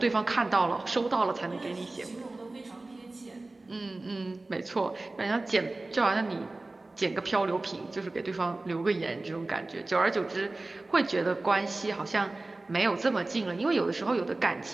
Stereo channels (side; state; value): left; quieter; 3.0 dB